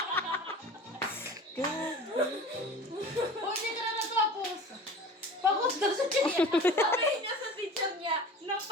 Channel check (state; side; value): normal; both; correlation 0.38